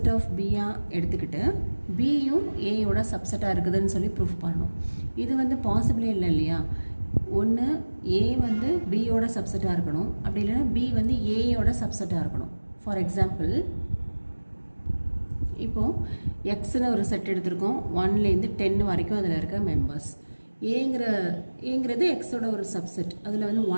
ஆஃப் பியாக எடுத்துக்கிட்டு பியும் ஏயோட சப்செட்டாக இருக்குதுன்னு சொல்லி ப்ரூஃப் பண்ணணும். இது வந்து பாசிபிளே இல்லை இல்லையா. ஒன்று ஏ வந்து பியோட சப்செட்டாக இருக்கணும், அப்படி இல்லைன்னா பி வந்து ஏயோட சப்செட்டாக இருக்கணும். ஃபார் எக்ஸாம்பிள், இப்போது எக்ஸ்னு ஒரு செட் எடுத்திருக்கோம், 1லேருந்து 10 வரைக்கும் அதில் இருக்க மெம்பர்ஸ். ஏங்கிறது எக்ஸோட ஒரு சப்செட், அதில் வந்து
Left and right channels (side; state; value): both; inverted; correlation -1.00